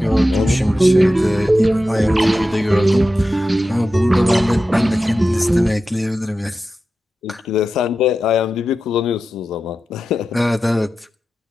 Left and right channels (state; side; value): normal; both; correlation 0.92